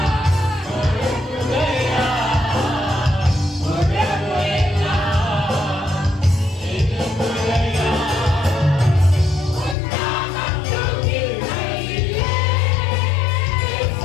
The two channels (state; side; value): drops out; right; at 9.8 s